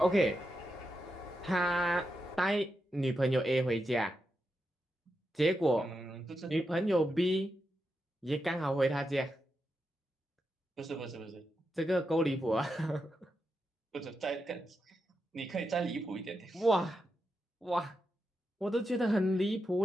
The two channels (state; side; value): normal; both; correlation 0.86